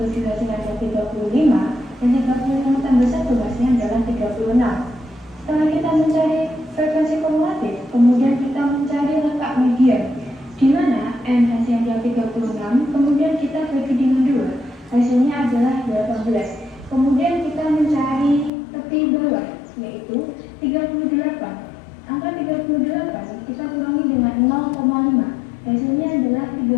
7 hasilnya adalah 35. Dan 35 tambah 1 hasilnya adalah 36. Setelah kita mencari frekuensi kumulatif, kemudian kita mencari letak median, di mana N hasilnya adalah 36, kemudian kita bagi dengan 2, hasilnya adalah 18. Kemudian kita mencari tepi bawah, yaitu 38. Angka 38 kita kurangi dengan 0,5, hasilnya adalah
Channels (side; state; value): right; drops out; at 18.5 s